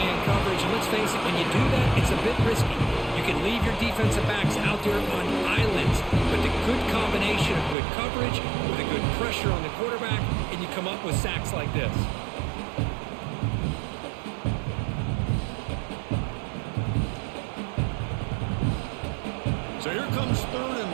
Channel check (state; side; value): drops out; left; at 7.8 s